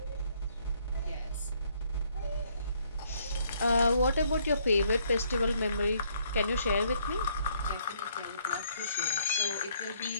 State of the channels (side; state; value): both; inverted; correlation -0.67